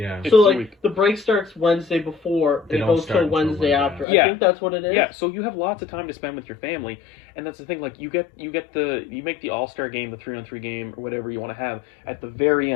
It's So a like week. the break starts Wednesday before They and it don't goes start till until Wednesday Monday. after. Yeah. I think that's what it is. Yeah, so you have lots of time to spend with your family, and that's the thing. Like you make the All-Star game, the 3-on-3 game, or whatever you want to have at the very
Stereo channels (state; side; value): drops out; right; at 4.0 s